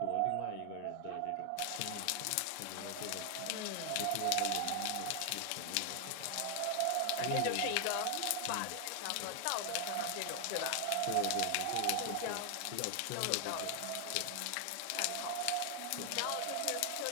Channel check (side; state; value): both; different; correlation 0.00